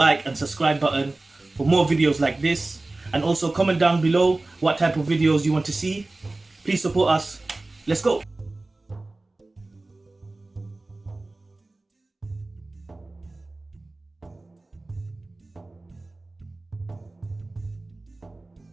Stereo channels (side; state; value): left; quieter; 3.0 dB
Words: and subscribe button for more videos like this, and also comment down below what type of videos you want to see. Please support us. Let's go.